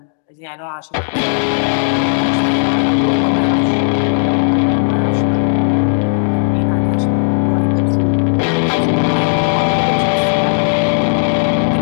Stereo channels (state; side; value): silent; right; digital silence